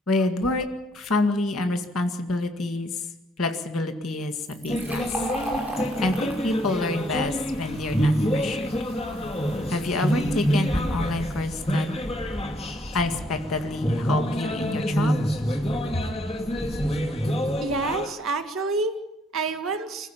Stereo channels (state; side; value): normal; both; correlation 0.69